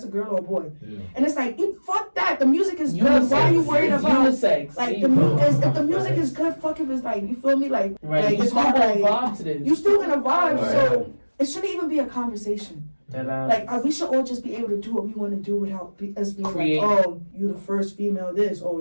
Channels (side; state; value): both; inverted; correlation -1.00